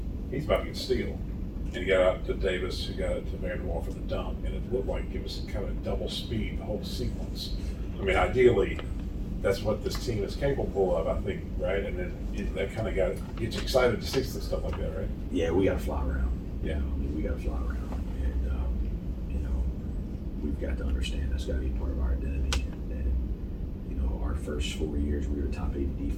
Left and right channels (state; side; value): identical; both; correlation 1.00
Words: he's about to get steal, and he got out to Davis, who got it to Vanderwall for the dunk, and it looked like it was kind of double speed the whole sequence. I mean, ideally, that's what this team is capable of, I think, right? And then that kind of gets you excited to see stuff like that, right? Yeah, we got to fly around. Yeah. I mean, we got to fly around, and you know, we've got to understand that's got to be part of our identity. And you know, our first 4 years, we were top 8